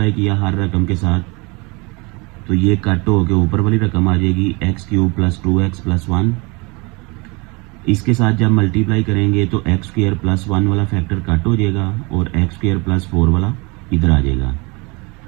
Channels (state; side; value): quieter; left; 27.6 dB